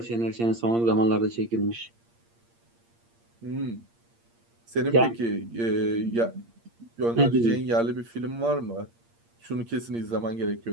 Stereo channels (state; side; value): late; left; 8.6 ms